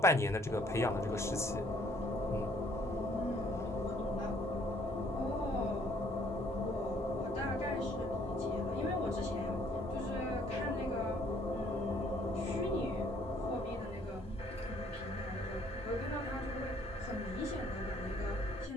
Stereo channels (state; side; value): normal; both; correlation 0.62